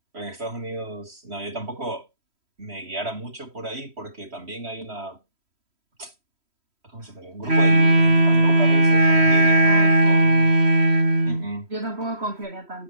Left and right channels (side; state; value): left; late; 3.1 ms